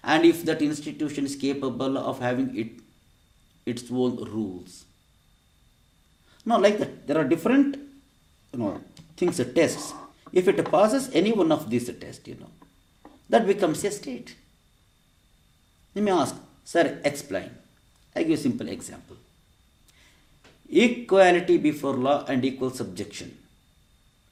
and if that institution is capable of having its own rules. Now, like that, there are different things, tests. If it passes any one of these tests, that becomes a state. You may ask, sir, explain. I give a simple example. Equality before law and equal subjection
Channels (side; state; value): both; identical; correlation 1.00